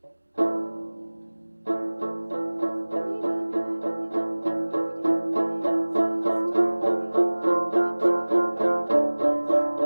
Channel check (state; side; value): inverted; both; correlation -1.00